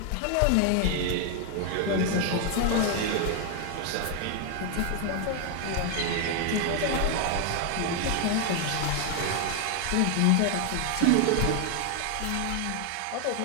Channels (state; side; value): different; both; correlation 0.00